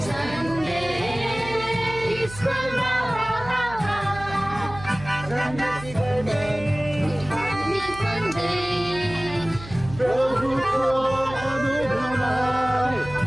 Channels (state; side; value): noise; right; hum, 14 dB below the sound